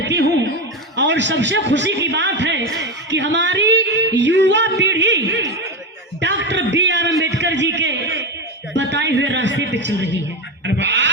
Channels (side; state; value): both; normal; correlation 0.15